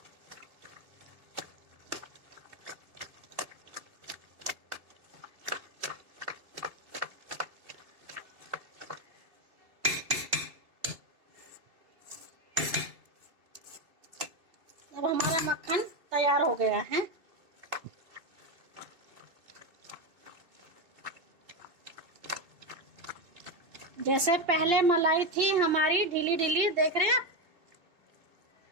अब हमारा मक्खन तैयार हो गया है। जैसे पहले मलाई थी हमारी ढीली ढीली, देख रहे हैं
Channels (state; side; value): late; left; 3.0 ms